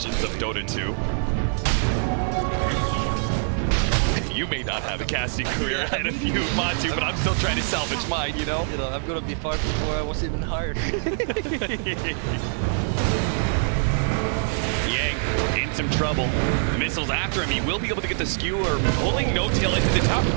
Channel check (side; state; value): left; silent; 62 dB below the other